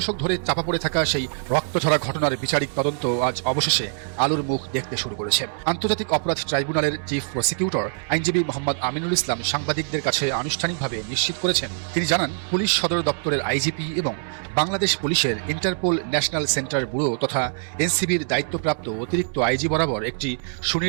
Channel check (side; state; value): left; silent; digital silence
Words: ধরে চাপা পড়ে থাকা সেই রক্তঝরা ঘটনার বিচারিক তদন্ত আজ অবশেষে আলোর মুখ দেখতে শুরু করেছে। আন্তর্জাতিক অপরাধ ট্রাইব্যুনালের চিফ প্রসিকিউটর আইনজীবী মোহাম্মদ আমিনুল ইসলাম সাংবাদিকদের কাছে আনুষ্ঠানিকভাবে নিশ্চিত করেছেন, তিনি জানান পুলিশ সদর দপ্তরের আইজিপি এবং বাংলাদেশ পুলিশের ইন্টারপোল ন্যাশনাল সেন্টার ব্যুরো তথা এনসিবির দায়িত্বপ্রাপ্ত অতিরিক্ত আইজি বরাবর একটি